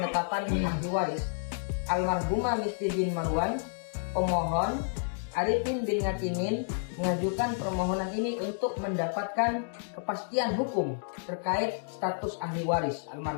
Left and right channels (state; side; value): silent; right; digital silence